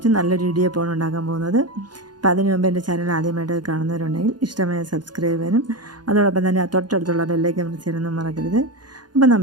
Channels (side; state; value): left; late; 0.70 ms